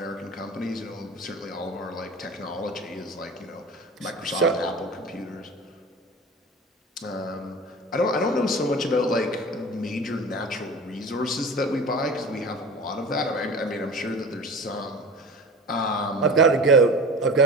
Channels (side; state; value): both; normal; correlation 0.35